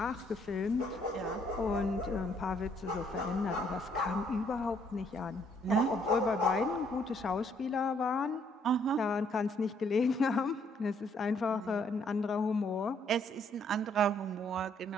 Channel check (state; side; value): normal; both; correlation 0.67